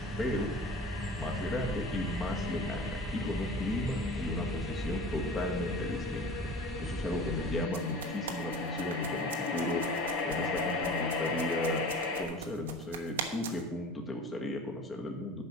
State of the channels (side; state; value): both; normal; correlation 0.40